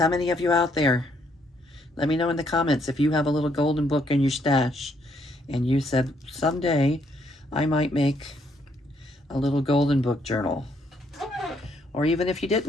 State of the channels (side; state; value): both; normal; correlation 0.71